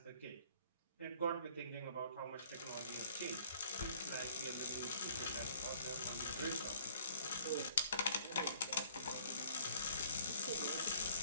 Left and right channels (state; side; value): inverted; both; correlation -0.55